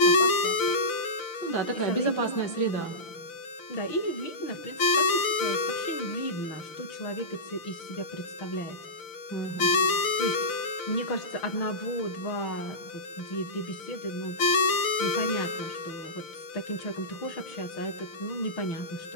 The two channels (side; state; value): right; late; 6.0 ms